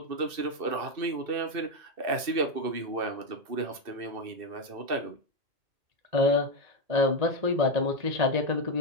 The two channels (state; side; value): late; left; 2.6 ms